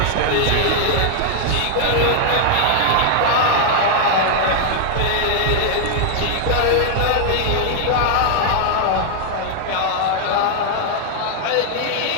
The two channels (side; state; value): both; different; correlation 0.00